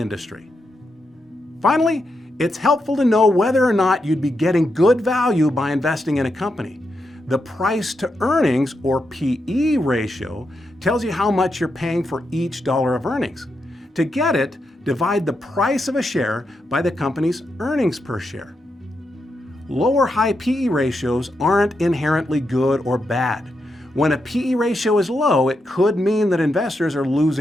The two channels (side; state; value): both; normal; correlation 0.84